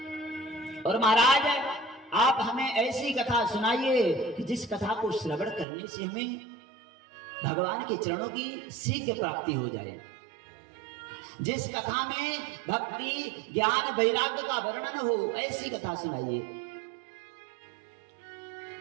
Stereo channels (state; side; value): drops out; left; at 5.7 s